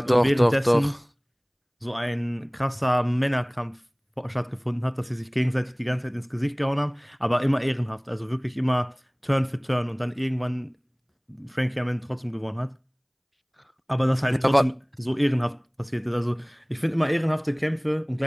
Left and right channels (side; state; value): both; identical; correlation 1.00